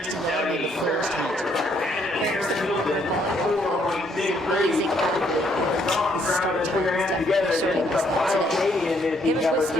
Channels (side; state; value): both; normal; correlation 0.69